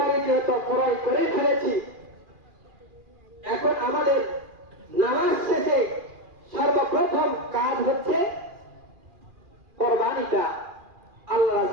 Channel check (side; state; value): left; late; 2.4 ms